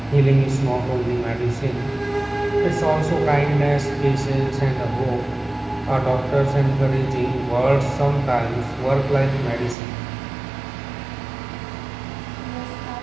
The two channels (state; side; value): drops out; left; at 9.8 s